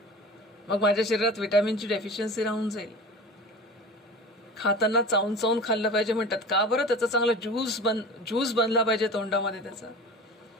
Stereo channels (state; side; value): normal; both; correlation 0.36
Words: मग माझ्या शरीरात विटॅमिनची डेफिशियन्सी राहून जाईल. खाताना चावून चावून खाल्लं पाहिजे म्हणतात. का बरं? त्याचा चांगला ज्यूस बनला पाहिजे तोंडामध्ये. त्याचा